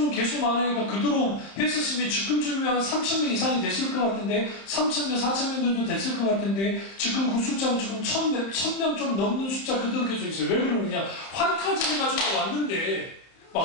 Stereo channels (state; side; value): late; right; 31 ms